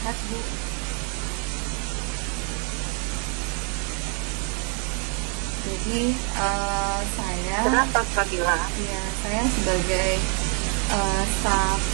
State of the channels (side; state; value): left; quieter; 38.9 dB